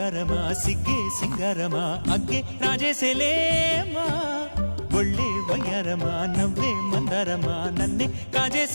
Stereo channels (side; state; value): both; inverted; correlation -1.00